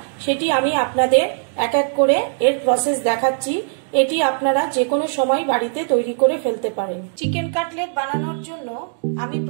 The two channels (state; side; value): silent; left; digital silence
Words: সেটি আমি আপনাদের এক এক করে এর প্রসেস দেখাচ্ছি। এটি আপনারা যে কোনো সময় বাড়িতে তৈরি করে ফেলতে পারেন। চিকেন কাটলেট বানানোর জন্য আমি